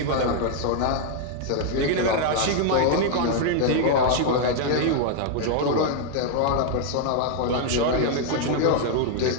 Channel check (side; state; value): both; different; correlation 0.00